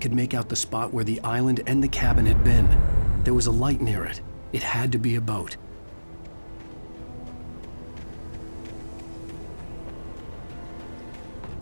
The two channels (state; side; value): inverted; both; correlation -1.00